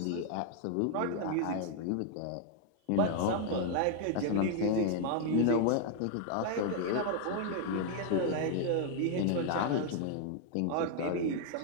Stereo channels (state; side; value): different; both; correlation 0.00